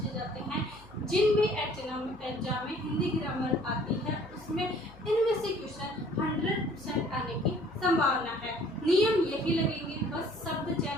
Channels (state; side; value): noise; left; hum, 24 dB below the sound